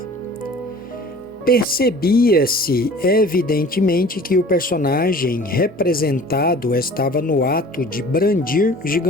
Percebia-se evidentemente que o personagem representado estava no ato de brandir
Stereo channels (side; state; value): both; normal; correlation 0.45